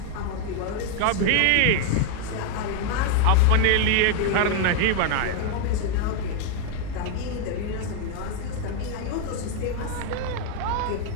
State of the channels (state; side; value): different; both; correlation 0.01